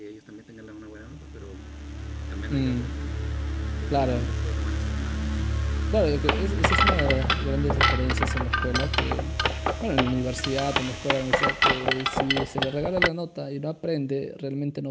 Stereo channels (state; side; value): identical; both; correlation 1.00